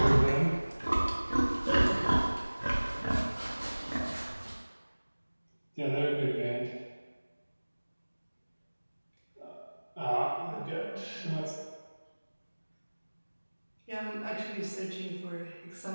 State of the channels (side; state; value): both; inverted; correlation -1.00